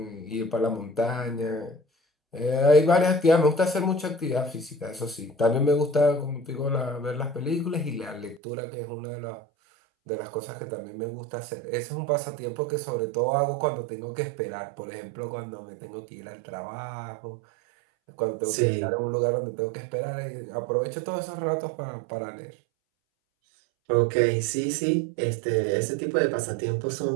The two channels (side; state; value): left; drops out; at 8.4 s